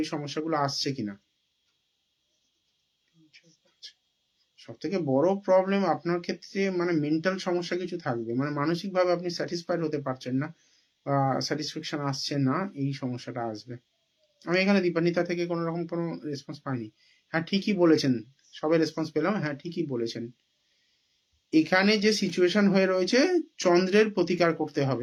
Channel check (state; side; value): identical; both; correlation 1.00